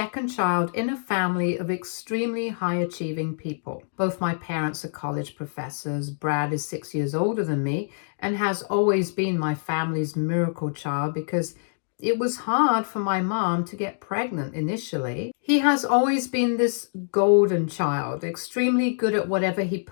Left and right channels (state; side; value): silent; right; digital silence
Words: child in a family of extremely high achieving people. Both my parents are college professors. Brad is 6 years older than me and has always been my family's miracle child because it was hard for my mom to get pregnant initially. He has always been this golden child, extremely good at whatever he